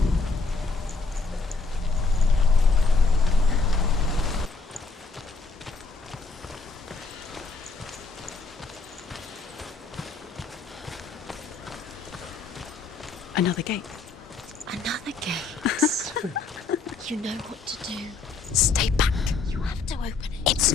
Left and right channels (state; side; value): quieter; right; 4.2 dB